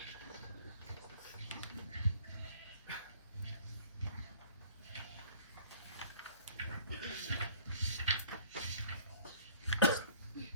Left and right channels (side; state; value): both; inverted; correlation -0.53